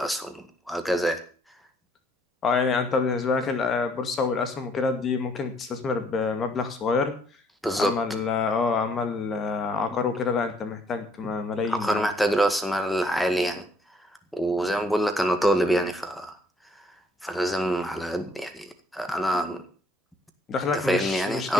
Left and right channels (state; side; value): normal; both; correlation 0.64